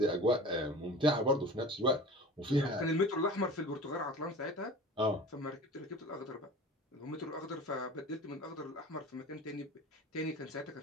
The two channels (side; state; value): both; normal; correlation 0.38